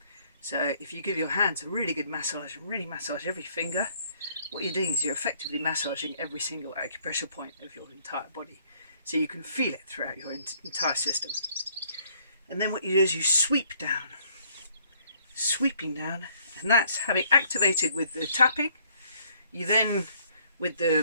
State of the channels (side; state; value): both; inverted; correlation -0.63